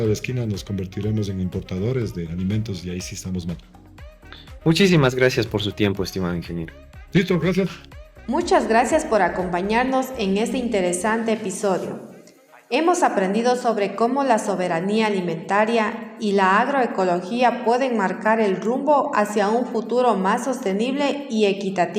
de la esquina nos convertiremos en importadores de alimentos y ahí sí estamos mal. Muchísimas gracias por su tiempo, estimado ingeniero. Listo, gracias. Muchas gracias por acompañarnos en este interesante episodio. Hemos aprendido sobre cómo la soberanía alimentaria y la agroecología pueden marcar el rumbo hacia un futuro más sostenible y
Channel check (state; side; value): identical; both; correlation 1.00